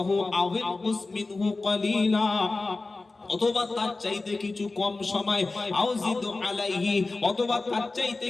আও ইনকুস মিনহু কালিলা, অথবা তার চাইতে কিছু কম সময়, আউজিদু আলাইহি, অথবা তার চাইতে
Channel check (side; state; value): right; quieter; 3.5 dB